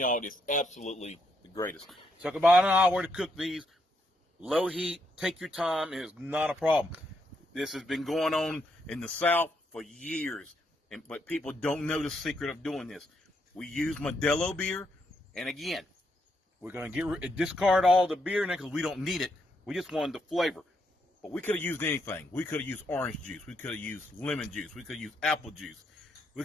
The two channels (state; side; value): normal; both; correlation 0.77